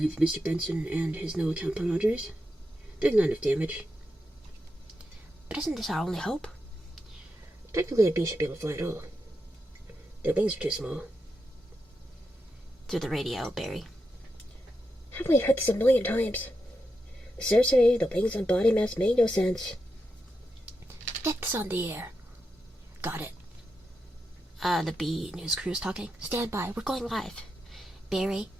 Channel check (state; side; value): normal; both; correlation 0.87